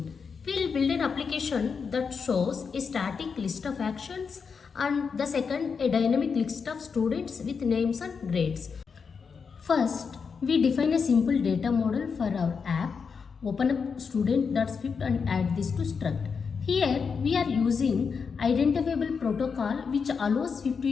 We'll build an application that shows a static list of actions and the second a dynamic list of students with names and grades. First, we define a simple data model for our app. Open up student.swift and add this to struct. Here we are using identifiable protocol which allows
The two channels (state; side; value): quieter; right; 5.7 dB